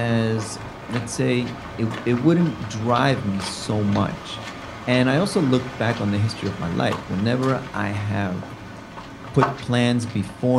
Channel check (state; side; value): identical; both; correlation 1.00